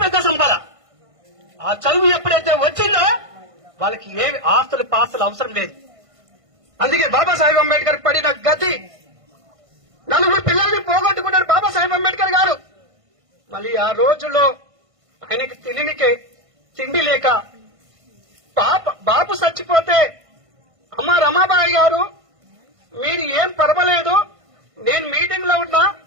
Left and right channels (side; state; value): left; late; 1.5 ms